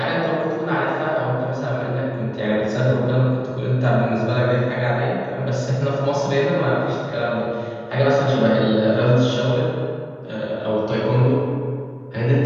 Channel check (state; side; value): identical; both; correlation 1.00